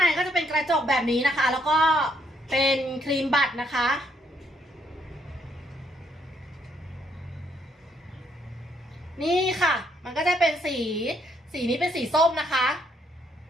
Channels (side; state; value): both; normal; correlation 0.72